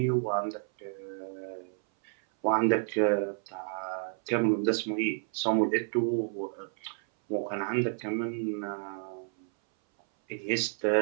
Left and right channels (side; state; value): left; silent; 57 dB below the other